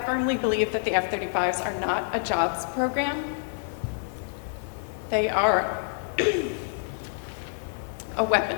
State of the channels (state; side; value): silent; right; 58 dB below the other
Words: believe that the F-35s are not a jobs program. They are a